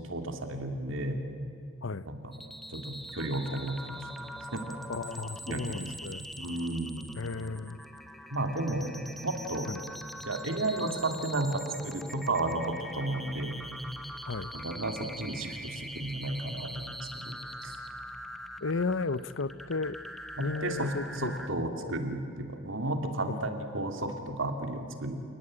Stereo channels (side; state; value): both; normal; correlation 0.25